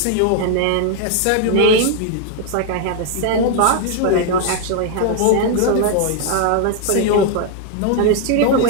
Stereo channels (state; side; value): different; both; correlation 0.00